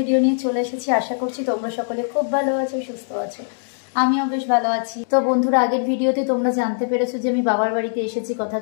নিয়ে চলে এসেছি। আশা করছি তোমরা সকলে খুব ভালো আছো, সুস্থ আছো। আমিও বেশ ভালো আছি। তো বন্ধুরা, আগের ভিডিওতে তোমরা জানতে পেরেছো যে আমি বাবার বাড়িতে এসেছি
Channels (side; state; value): right; silent; digital silence